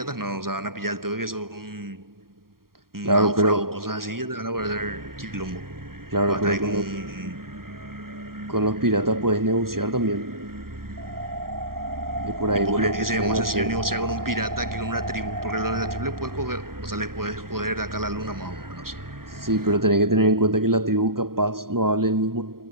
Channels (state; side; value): late; left; 0.93 ms